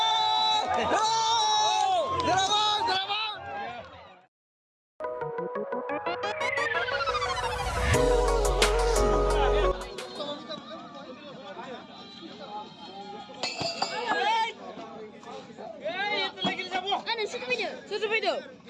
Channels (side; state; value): both; identical; correlation 1.00